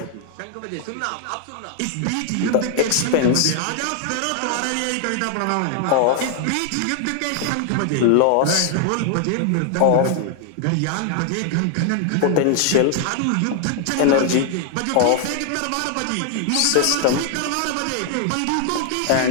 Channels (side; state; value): both; different; correlation 0.00